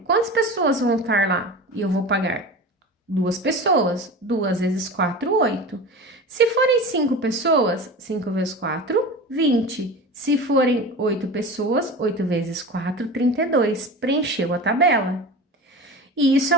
quantas pessoas vão estar lá? E eu vou pagar 2 pessoas. 2 vezes 4, 8. Se forem 5 pessoas, 5 vezes 4, 20. Se forem 8 pessoas, 8 vezes 4, 32. Preencheu a tabela. E isso é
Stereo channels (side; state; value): both; normal; correlation 0.32